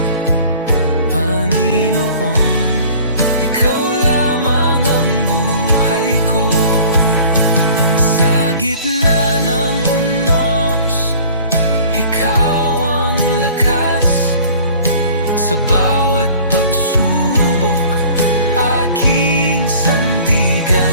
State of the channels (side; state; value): both; inverted; correlation -0.48